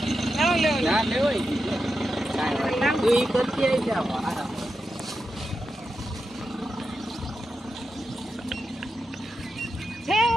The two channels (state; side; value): normal; both; correlation 0.88